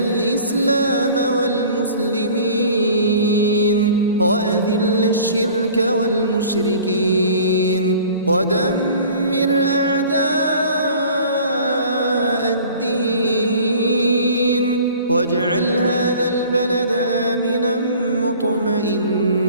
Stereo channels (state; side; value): inverted; both; correlation -0.47